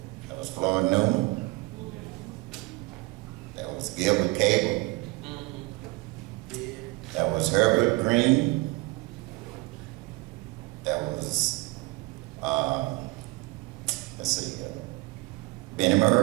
That was Floyd Newman. That was Gilbert Cable. That was Herbert Green. That was, let's see, Benny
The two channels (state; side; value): quieter; left; 22.5 dB